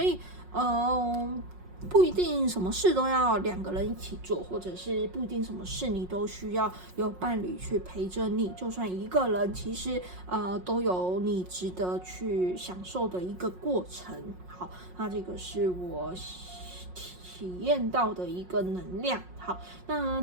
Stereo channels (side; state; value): left; late; 5.5 ms